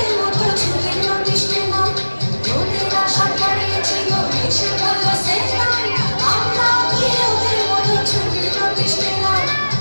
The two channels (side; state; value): both; inverted; correlation -1.00